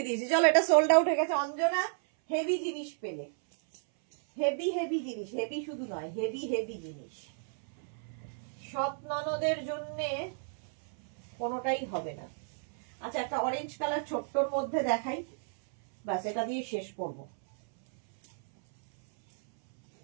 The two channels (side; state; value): left; silent; 57 dB below the other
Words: দিয়েছি। চলো, এটা সোল্ড আউট হয়ে গেছে। অঞ্জনা হেভি জিনিস পেলে, হেভি জিনিস, হেভি শুধু নয়, হেভি জিনিস। সৎ ননদের জন্যে কোনোটাই হবে না। আচ্ছা, একটা অরেঞ্জ কালার ছোট্টর মধ্যে দেখাই, বাস এটা দিয়ে শেষ করবো।